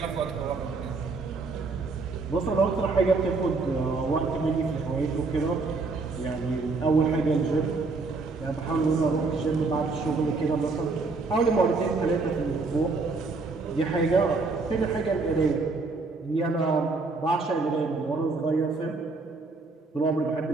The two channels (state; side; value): quieter; left; 3.8 dB